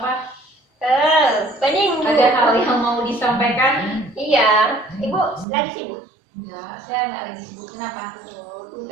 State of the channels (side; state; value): left; drops out; at 5.5 s